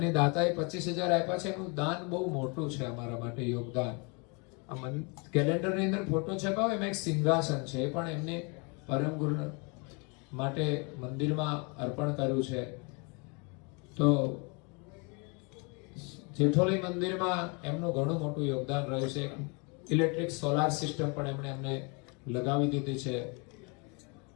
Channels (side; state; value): right; quieter; 32.6 dB